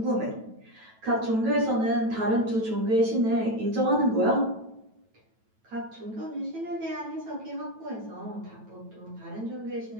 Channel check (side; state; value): left; late; 9.1 ms